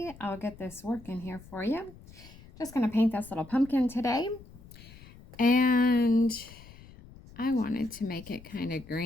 I'll get this working here for you. Just going to paint this little pumpkin today, and I wanted to make it kind of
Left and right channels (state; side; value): noise; left; rumble, 20 dB below the sound